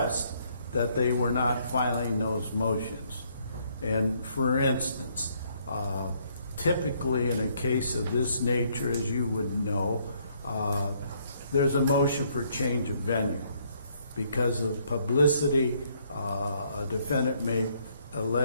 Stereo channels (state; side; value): inverted; both; correlation -0.68